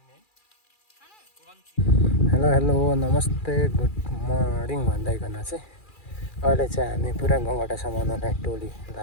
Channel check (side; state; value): right; late; 2.4 ms